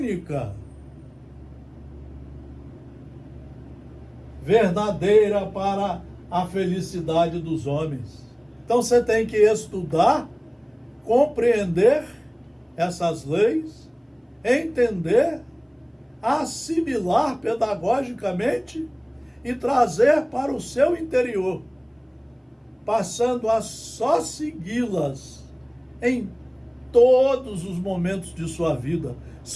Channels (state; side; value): identical; both; correlation 1.00